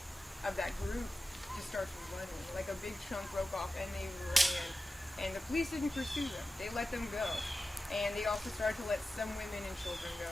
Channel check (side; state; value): both; normal; correlation 0.94